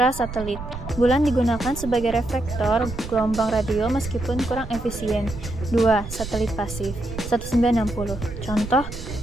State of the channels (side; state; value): right; noise; rumble, 10 dB below the sound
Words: Bulan digunakan sebagai reflektor gelombang radio meskipun kurang efisien. 2. Satelit pasif 1960. Contoh,